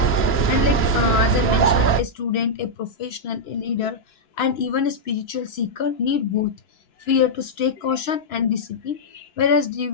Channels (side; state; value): right; late; 2.9 ms